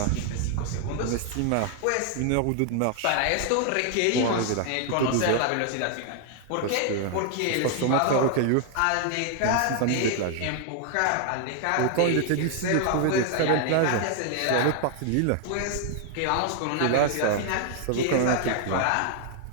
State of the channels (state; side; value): different; both; correlation 0.00